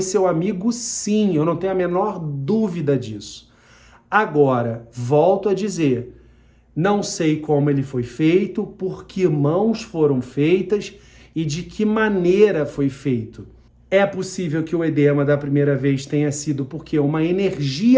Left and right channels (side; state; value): both; identical; correlation 1.00